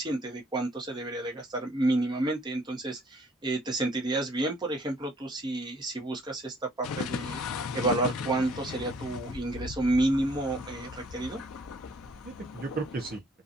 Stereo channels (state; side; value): normal; both; correlation 0.60